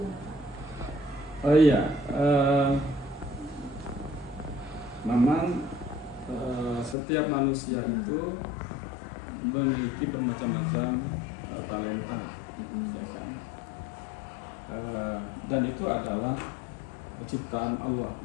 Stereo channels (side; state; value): right; drops out; at 7.0 s